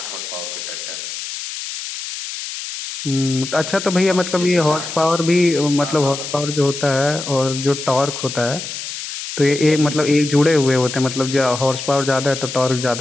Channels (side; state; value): left; noise; hiss, 8 dB below the sound